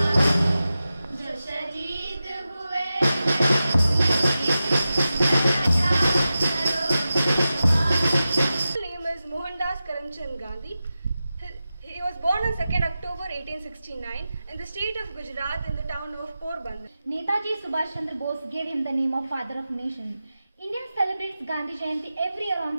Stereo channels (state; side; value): inverted; both; correlation -0.93